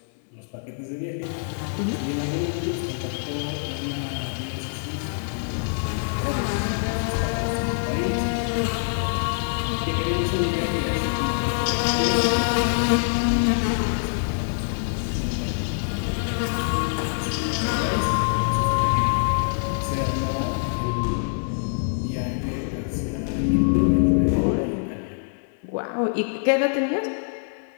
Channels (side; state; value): right; silent; digital silence